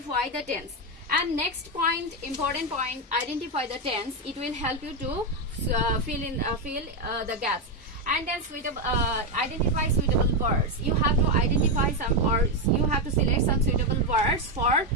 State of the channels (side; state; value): both; normal; correlation 0.07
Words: the tense. And next point, important point, identify the tense. It will help you to fill the gaps. And then identify suitable words. You have to identify some words. You have to select some suitable words for